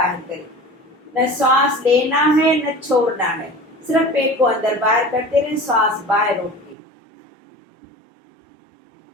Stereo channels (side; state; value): left; drops out; at 6.8 s